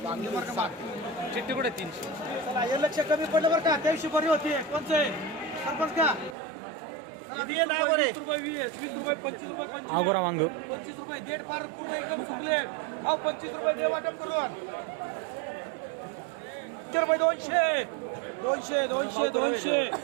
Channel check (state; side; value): drops out; left; at 6.4 s